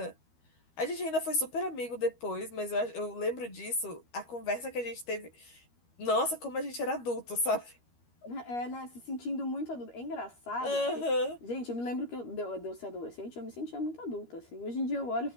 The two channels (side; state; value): right; late; 13 ms